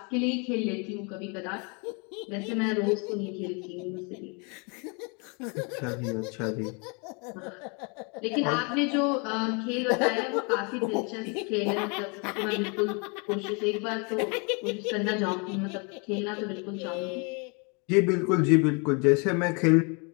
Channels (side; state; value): right; quieter; 33.6 dB